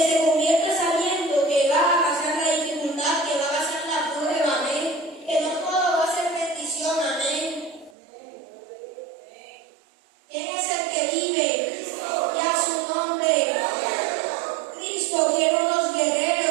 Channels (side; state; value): left; drops out; at 8.0 s